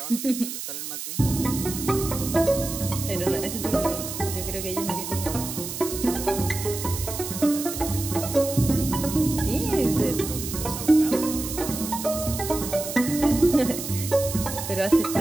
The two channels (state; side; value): noise; right; hiss, 7 dB below the sound